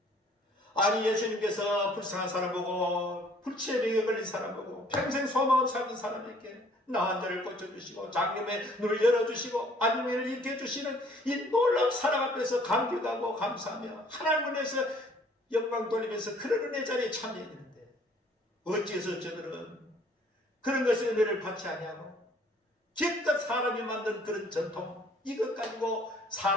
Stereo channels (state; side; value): normal; both; correlation 0.58